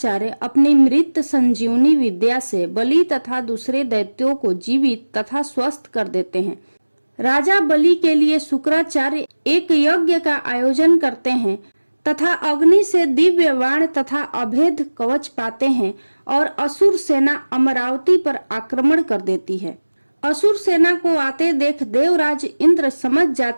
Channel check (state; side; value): inverted; both; correlation -1.00